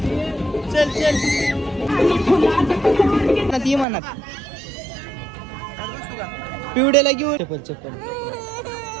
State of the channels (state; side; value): drops out; left; at 3.9 s